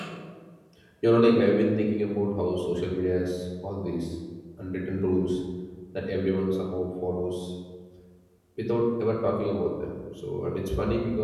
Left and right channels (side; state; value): both; identical; correlation 1.00